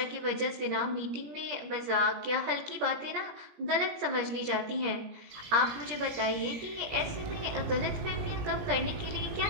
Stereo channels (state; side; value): late; left; 17 ms